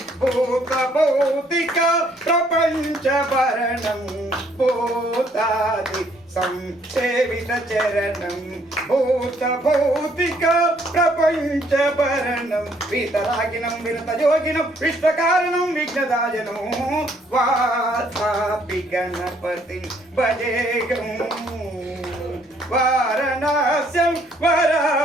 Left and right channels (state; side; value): normal; both; correlation 0.66